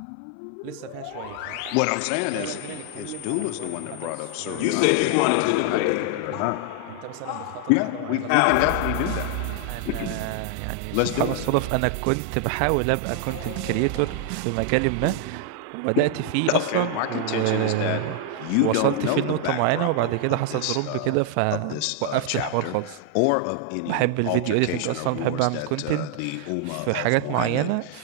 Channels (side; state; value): both; different; correlation 0.00